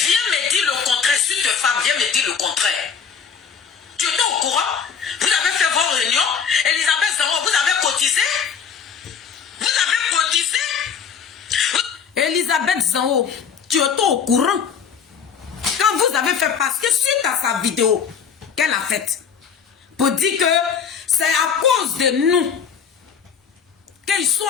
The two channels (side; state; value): right; quieter; 6.8 dB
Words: me dire le contraire. Sur tes femmes, viens me dire le contraire. Tu étais au courant? Vous avez fait vos réunions. Elisabeth Zango, vous avez cotisé? Vous avez cotisé? Elisabeth Zango, tu étais au courant? Quand vous avez fait, parce que suite à sa vidéo qu'elle a faite, pour dire que c'est à cause de nous qu'ils sont